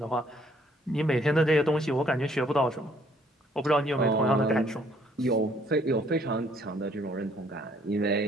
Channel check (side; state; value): both; normal; correlation 0.64